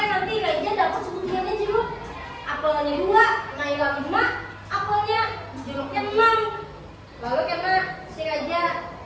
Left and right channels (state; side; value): identical; both; correlation 1.00